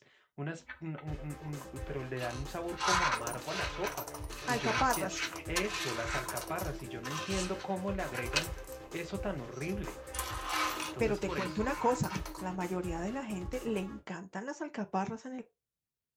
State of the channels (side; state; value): both; identical; correlation 1.00